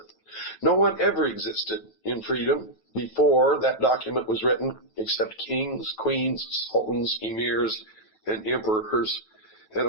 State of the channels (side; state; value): right; late; 9.1 ms